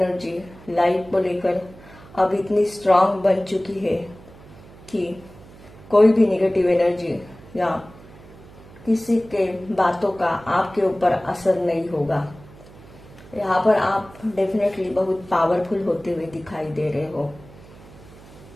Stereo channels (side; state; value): right; noise; hum, 21 dB below the sound